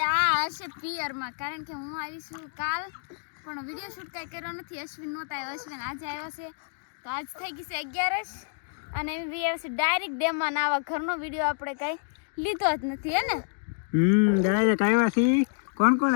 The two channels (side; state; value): right; silent; digital silence